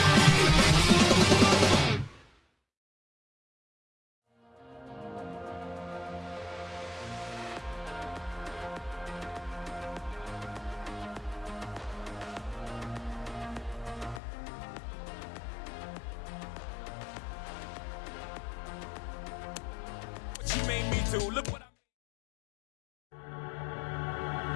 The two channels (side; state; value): right; drops out; at 14.2 s